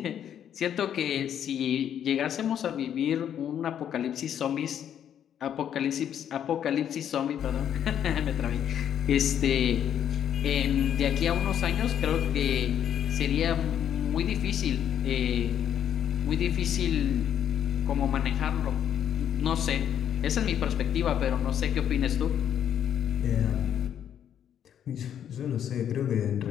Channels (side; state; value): right; quieter; 9.5 dB